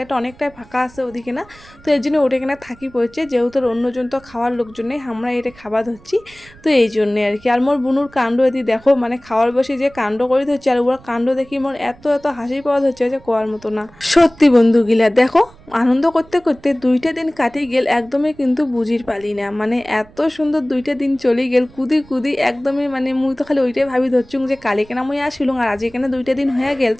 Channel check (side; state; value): right; noise; rumble, 24 dB below the sound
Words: অনেকটাই ফাঁকা আছে ওদিকে না, তো এই জন্য ওটা কিনা থাকি পড়ছে, যেহেতু অন্যজন তো খাওয়ার লোকজনে আমরা এটা খাওয়া ধরছি, তো এই জন্যে আর কি। আর মোর বুনুর কাণ্ড এদি দেখো, মানে খাওয়ার বসে যে কাণ্ড করে ধরছে, আর ওর কাণ্ড দেখি মোর এত এত হাসি পাওয়া ধরছে যে কোয়ার মতো না। সত্যি বন্ধুগুলা দেখো, আনন্দ করতে করতে 2টা দিন কাটিয়ে গেল, একদমই কিন্তু বুঝির পালি না, মানে এত সুন্দর 2টা দিন চলে গেল কুদি কুদি একদমই, মানে মুই তো খালি ওইটাই ভাবি ধরছুম যে কালি কেনা মুই আসিলুম, আর আজ এখানে 2টা দিন হয়ে গেল,